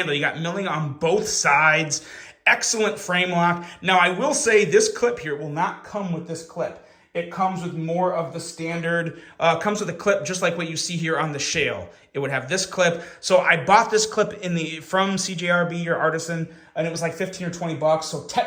You got milling on both sides. Excellent frame lock. Now, I will say this clip here will not come with this clip. It comes with more of the standard, comes with a clip just like what you see here on the Shale. It would have this clip. So I bought this clip from CJRB or Artisan, and it was like 15 or 20 bucks. So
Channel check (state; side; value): identical; both; correlation 1.00